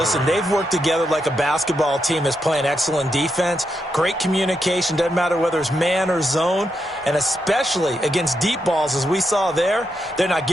they've worked together like a basketball team that's playing excellent defense. Great communication, doesn't matter whether it's man or zone. And especially against deep balls, as we saw there, they're not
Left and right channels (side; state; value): both; normal; correlation 0.83